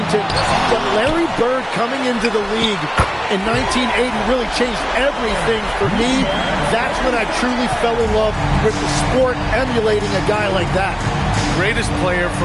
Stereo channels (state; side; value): identical; both; correlation 1.00